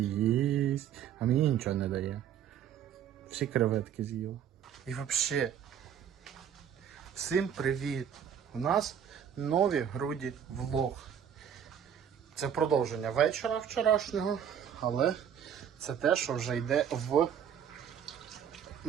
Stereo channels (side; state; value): left; quieter; 8.7 dB